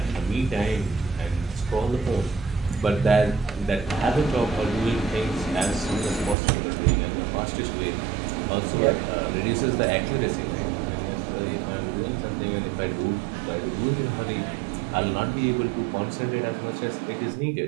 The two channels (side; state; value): left; drops out; at 6.4 s